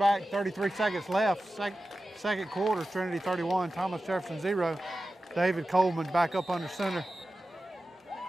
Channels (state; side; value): normal; both; correlation 0.94